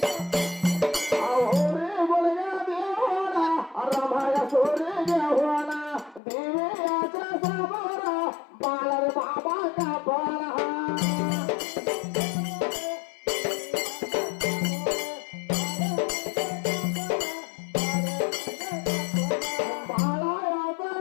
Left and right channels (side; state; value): right; drops out; at 6.2 s